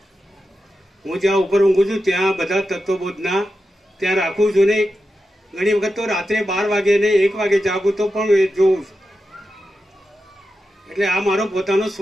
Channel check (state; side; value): normal; both; correlation 0.90